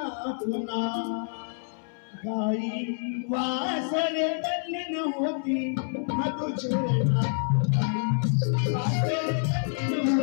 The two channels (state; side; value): silent; right; 60 dB below the other